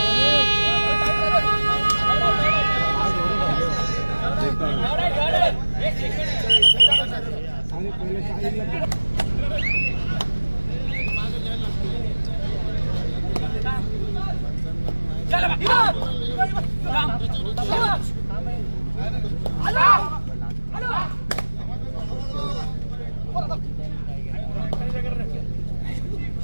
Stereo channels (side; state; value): both; inverted; correlation -1.00